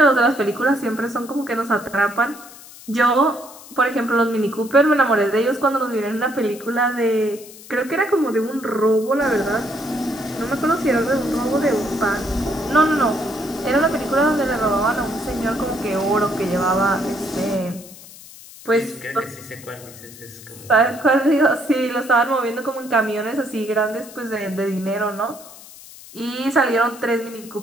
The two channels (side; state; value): left; noise; hiss, 18 dB below the sound